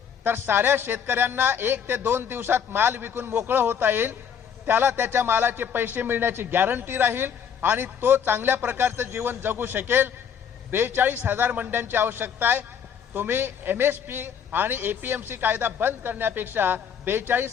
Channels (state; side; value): quieter; right; 7.7 dB